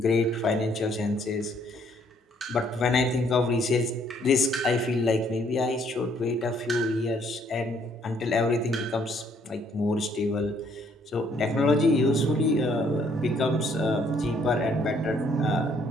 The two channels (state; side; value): normal; both; correlation 0.66